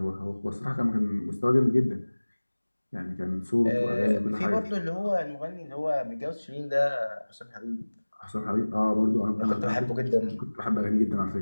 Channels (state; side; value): inverted; both; correlation -1.00